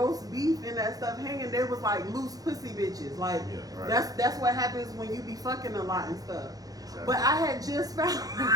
beef and that stuff hanging, they was like loose pussy bitches. Like that's what happens when you be fucking a lot and stuff. Exactly. But I had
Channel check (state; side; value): late; left; 0.18 ms